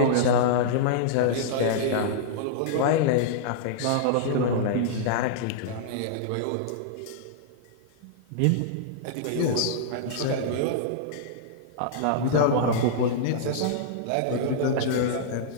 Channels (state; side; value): different; both; correlation -0.02